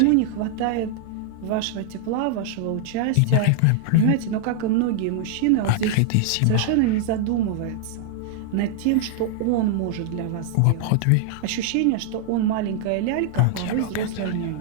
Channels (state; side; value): different; both; correlation 0.00